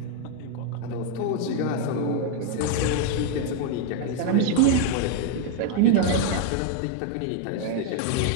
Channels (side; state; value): both; different; correlation 0.00